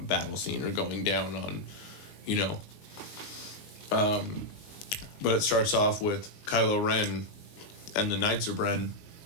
battle scene or going down on, but it starts off with Kylo Ren and the Knights of Ren,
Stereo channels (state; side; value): late; right; 19 ms